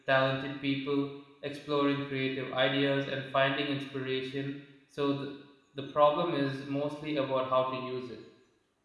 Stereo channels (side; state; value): both; identical; correlation 1.00